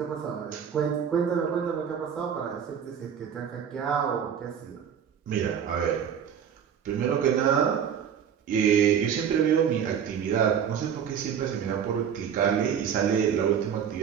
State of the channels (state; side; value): quieter; left; 8.2 dB